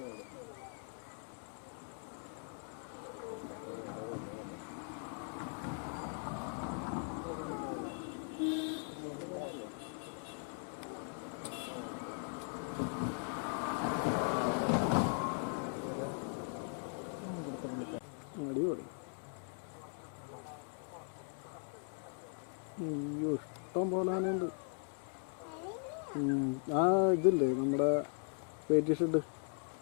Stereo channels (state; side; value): silent; right; 52 dB below the other